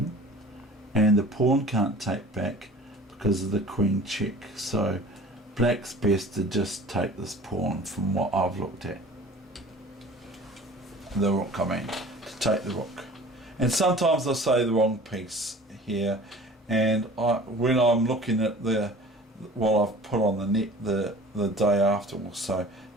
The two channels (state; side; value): normal; both; correlation 0.44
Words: and the pawn can't take back because of the queen check. So black's best to just take this pawn, from what I've looked at. The rook, I mean, to take the rook. And sometimes I say the wrong piece here, and when I'm looking at what I've put on the net the day after or so,